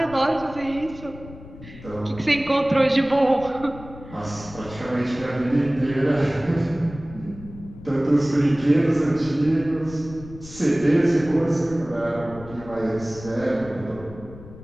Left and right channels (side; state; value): left; noise; rumble, 16 dB below the sound